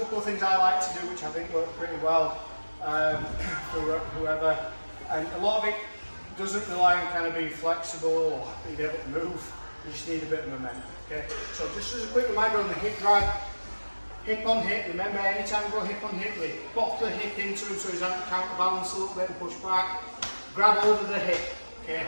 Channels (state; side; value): inverted; both; correlation -1.00